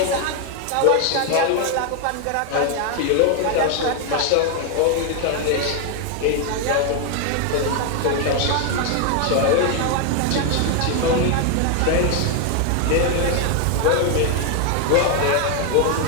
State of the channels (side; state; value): both; different; correlation 0.00